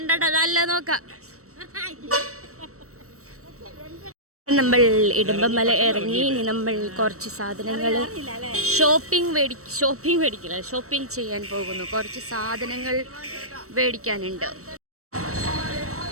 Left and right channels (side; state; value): left; late; 0.64 ms